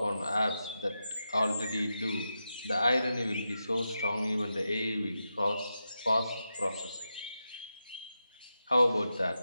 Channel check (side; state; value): both; inverted; correlation -0.89